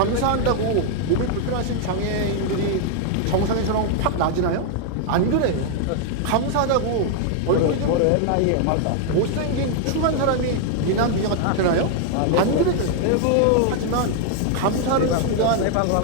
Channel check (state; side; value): different; both; correlation 0.00